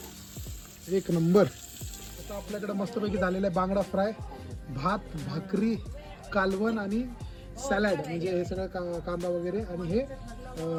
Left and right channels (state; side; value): identical; both; correlation 1.00